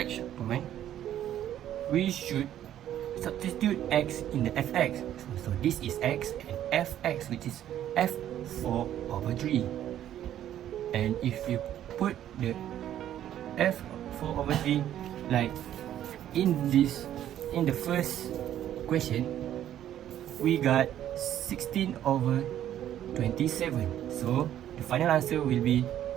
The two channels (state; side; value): quieter; left; 11.4 dB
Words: point, we should substitute x in the fx. So this is x and fx, which is f4/3. And if you put the f4/3 like in the first question, we got 16/27. So the final answer will be